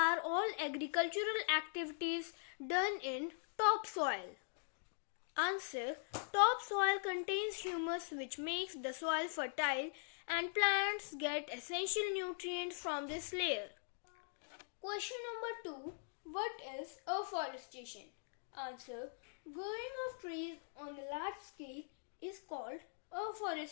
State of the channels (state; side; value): silent; right; digital silence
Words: all agricultural activities done in topsoil? Answer, topsoil contains humus which makes the soil fertile and plants get essential nutrients from this layer. Question number 2. What is afforestation? Answer, growing of trees on a large scale is called